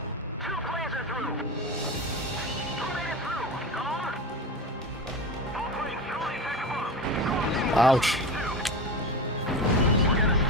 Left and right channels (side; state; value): both; normal; correlation 0.25